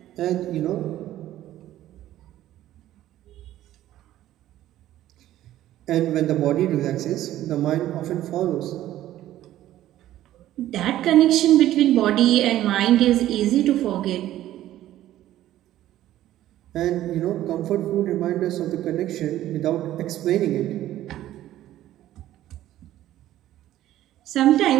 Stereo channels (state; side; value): quieter; left; 13.6 dB